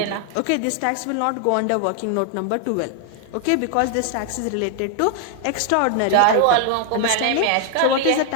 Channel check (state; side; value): different; both; correlation 0.00